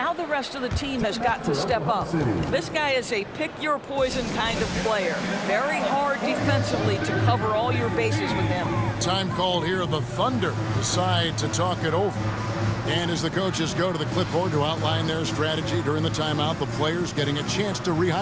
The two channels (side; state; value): both; identical; correlation 1.00